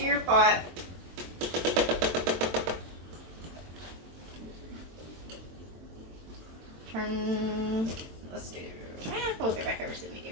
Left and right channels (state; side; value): late; left; 23 ms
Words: your pot. Let's do, we'll go back over to the